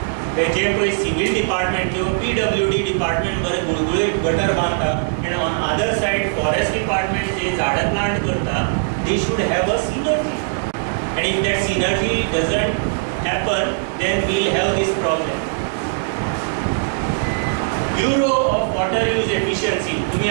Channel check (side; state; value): left; silent; digital silence